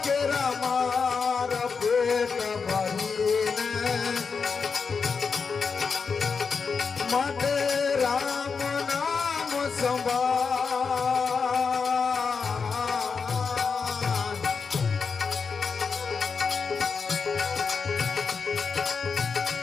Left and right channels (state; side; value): quieter; right; 5.4 dB